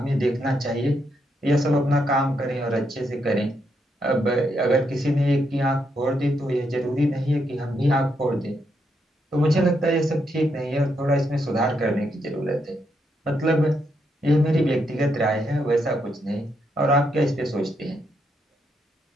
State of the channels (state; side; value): normal; both; correlation 0.79